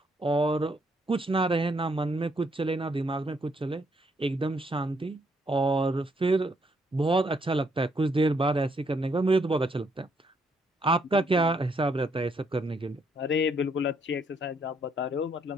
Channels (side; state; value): both; normal; correlation 0.72